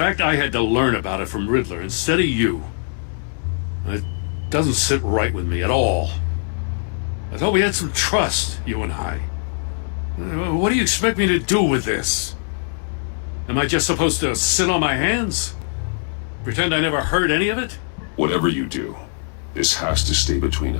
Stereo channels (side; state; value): right; silent; 60 dB below the other